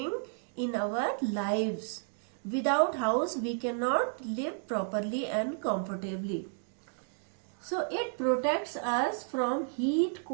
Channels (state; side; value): silent; left; digital silence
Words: in our lives. Without house, we cannot live properly and comfortably. So, it protects us from heat,